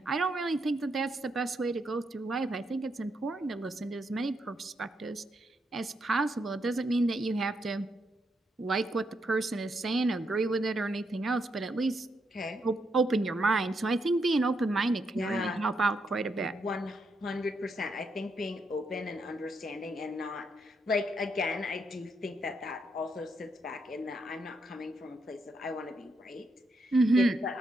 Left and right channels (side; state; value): both; normal; correlation 0.79